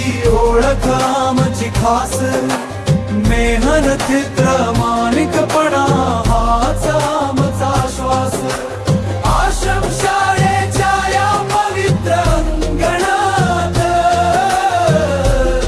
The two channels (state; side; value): identical; both; correlation 1.00